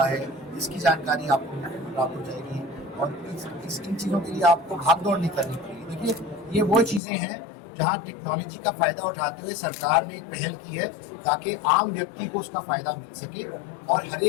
है इसकी जानकारी आपको प्राप्त हो जाएगी और इन चीज़ों के लिए आपको भागदौड़ नहीं करनी पड़ेगी। देखिए, ये वो चीज़ें हैं जहाँ टेक्नोलॉजी का फायदा उठाते हुए सरकार ने एक पहल की है ताकि आम व्यक्ति को उसका फायदा मिल सके और हर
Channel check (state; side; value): drops out; right; at 7.0 s